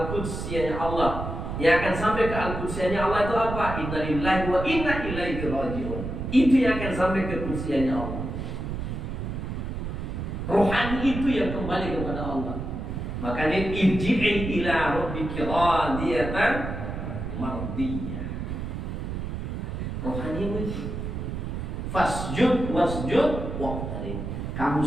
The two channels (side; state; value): right; noise; rumble, 5 dB below the sound